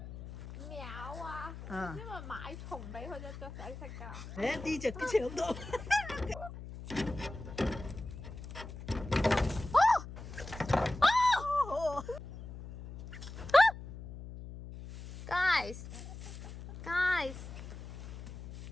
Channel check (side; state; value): left; noise; hum, 12 dB below the sound